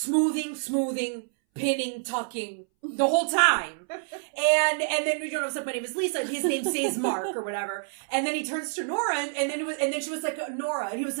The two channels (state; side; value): silent; left; 60 dB below the other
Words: pinning, tucking the whole time. And then we don't know, my name is Lisa, and his name says Mark or whatever. And then he turns to Nora, and then she was like, Nora. And he was